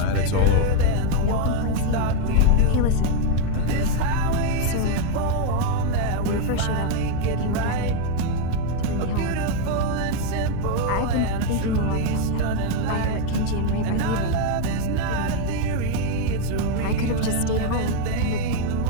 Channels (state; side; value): different; both; correlation 0.01